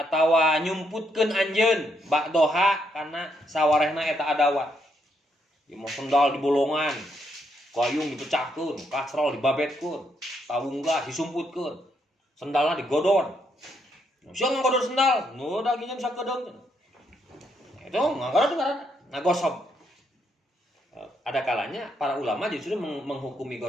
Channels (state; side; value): normal; both; correlation 0.76